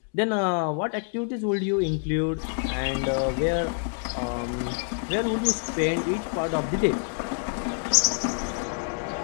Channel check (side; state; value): right; silent; 57 dB below the other